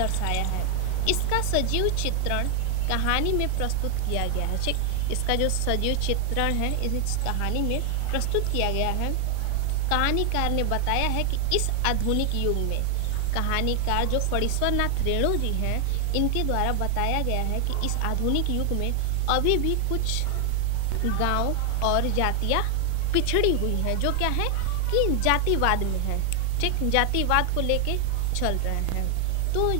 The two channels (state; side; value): different; both; correlation 0.00